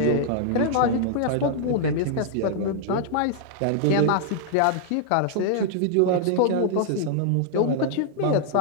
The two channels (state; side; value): different; both; correlation -0.01